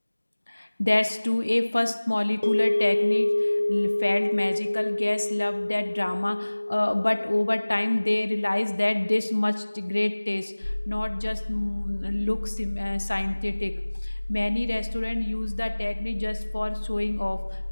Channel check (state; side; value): inverted; both; correlation -1.00